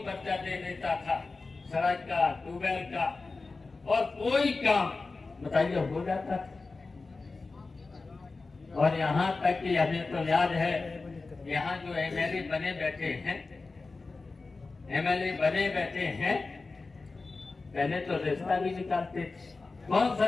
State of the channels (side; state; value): right; quieter; 3.8 dB